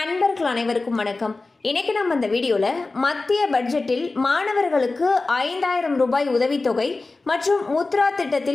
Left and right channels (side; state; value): right; quieter; 3.5 dB